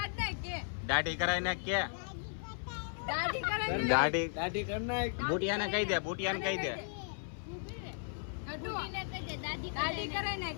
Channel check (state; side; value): silent; right; 54 dB below the other